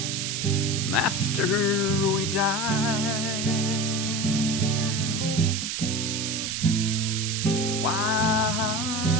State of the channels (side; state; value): right; noise; hiss, 3 dB below the sound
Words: after we die.